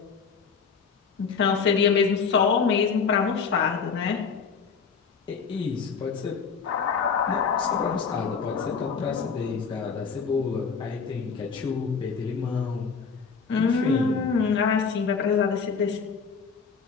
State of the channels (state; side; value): quieter; right; 5.8 dB